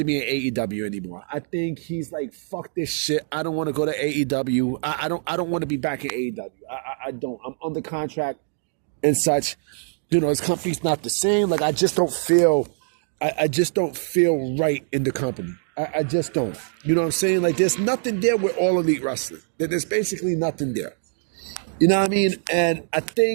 be in AEW anymore. I think he's like, fuck this shit. I don't want to go to AEW. I don't want to be back in AEW. I don't. I'm under contract and such. His company's not the same. Like I just don't feel right in the company. I just don't. You know what I'm saying? Like there's nothing there with All Elite Wrestling. There's basically nothing there. You know what I mean? And I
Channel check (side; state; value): left; silent; 63 dB below the other